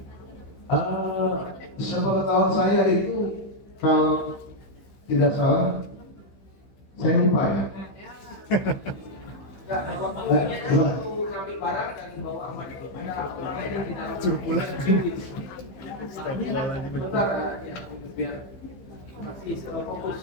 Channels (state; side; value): late; right; 15 ms